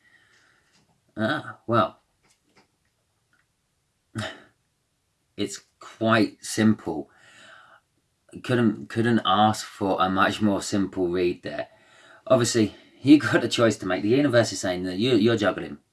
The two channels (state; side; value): identical; both; correlation 1.00